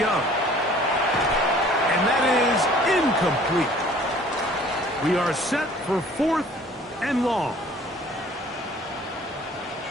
And that is incomplete. We are set for 4th and long.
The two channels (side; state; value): both; normal; correlation 0.52